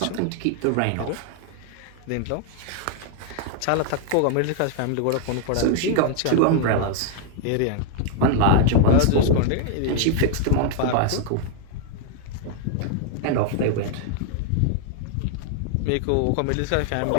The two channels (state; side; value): different; both; correlation 0.00